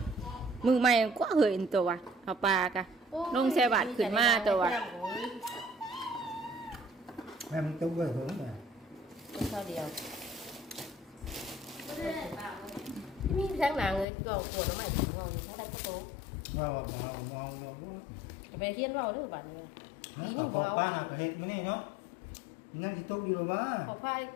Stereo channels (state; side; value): drops out; right; at 14.1 s